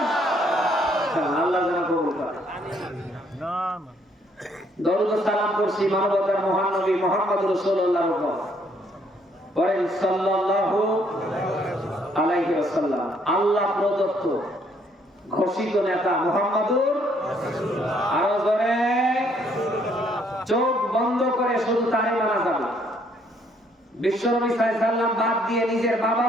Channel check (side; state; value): both; normal; correlation 0.67